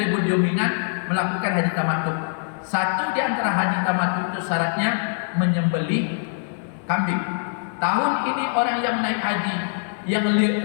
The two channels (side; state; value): right; silent; digital silence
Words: dominan melakukan haji tamattu. Satu di antara haji tamattu itu syaratnya menyembelih kambing. Tahun ini orang yang naik haji yang